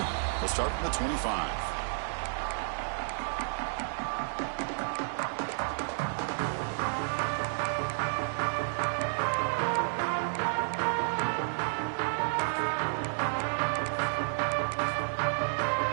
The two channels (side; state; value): left; silent; digital silence